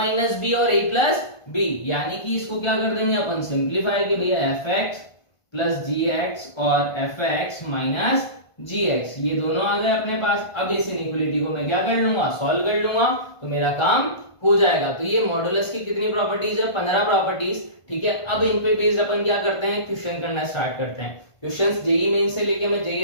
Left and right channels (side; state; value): right; late; 1.5 ms